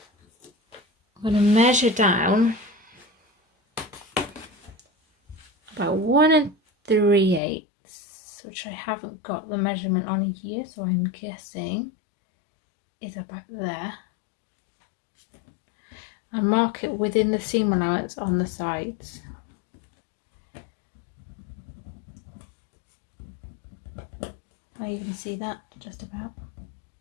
I'm going to measure down about 1 3/8, which I haven't got the measurement on here, so I'm guessing is about there, and mark it within the seam allowance on the sides. Can I even see that? Just about.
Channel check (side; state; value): right; drops out; at 7.4 s